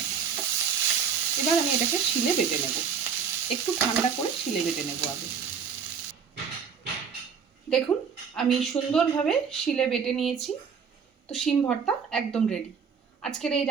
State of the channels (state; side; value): quieter; left; 6.5 dB